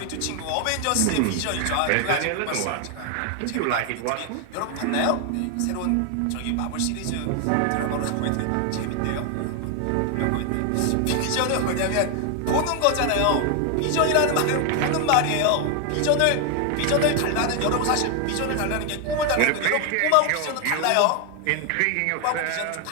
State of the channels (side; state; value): both; different; correlation 0.01